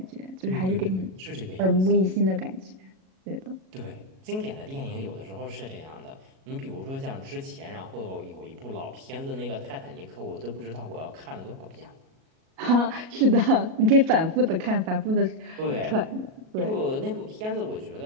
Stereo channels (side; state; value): left; late; 37 ms